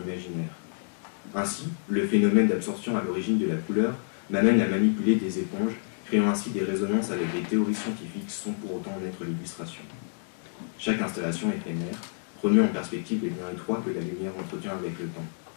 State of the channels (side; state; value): right; silent; digital silence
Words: imaginaire. Ainsi, le phénomène d'absorption à l'origine de la couleur m'amène à manipuler des éponges, créant ainsi des résonances avec des théories scientifiques sans pour autant en être l'illustration. Chaque installation éphémère remet en perspective les liens étroits que la lumière entretient avec le temps,